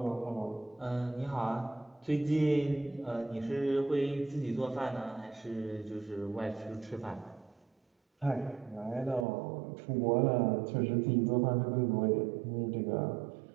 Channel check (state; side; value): drops out; left; at 9.2 s